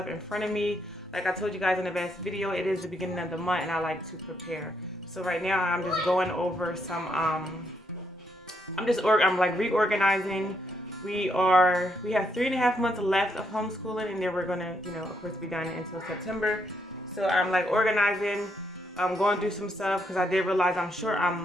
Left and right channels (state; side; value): normal; both; correlation 0.76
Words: in front of me. Like I told you guys in the last video, it is the beginning of the month and I like to prepare. So right now I'm just going over some, I'm like reorganizing. We have 3.5 months left of homeschooling, and then we're gonna, of course, be done until September. So I'm like organizing, I'm going through some stuff because I did realize I'm